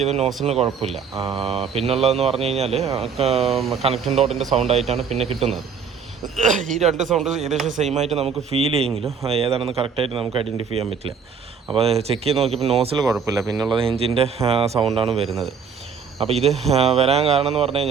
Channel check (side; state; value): left; quieter; 6.3 dB